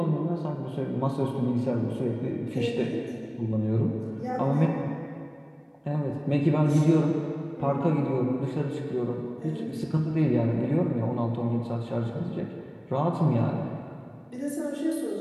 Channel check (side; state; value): both; identical; correlation 1.00